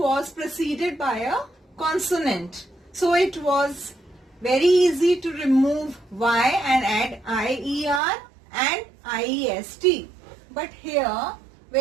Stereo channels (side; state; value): left; drops out; at 8.0 s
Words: preceded by a consonant. So it was very easy to remove y and add IER and IEST. But here,